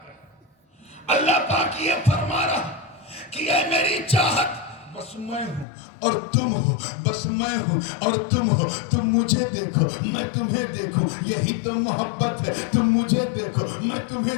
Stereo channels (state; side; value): drops out; right; at 5.7 s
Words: اللہ پاک یہ فرما رہا کہ اے میری چاہت بس میں ہوں اور تم ہو بس میں ہوں اور تم ہو تم مجھے دیکھو میں تمہیں دیکھوں یہی تو محبت ہے تم مجھے دیکھو میں تمہیں